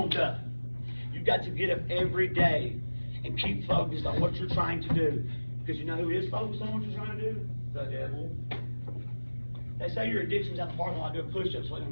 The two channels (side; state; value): both; inverted; correlation -1.00